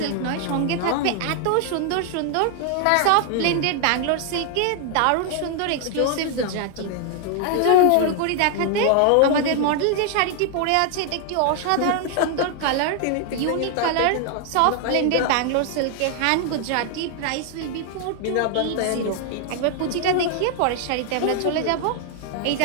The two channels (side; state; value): both; different; correlation 0.00